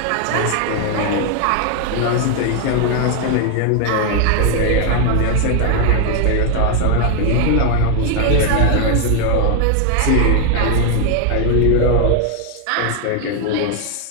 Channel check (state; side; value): different; both; correlation 0.00